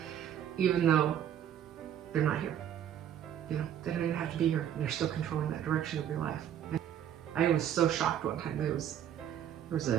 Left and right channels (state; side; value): quieter; left; 10.0 dB